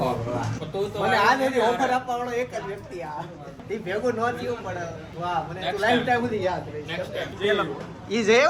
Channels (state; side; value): identical; both; correlation 1.00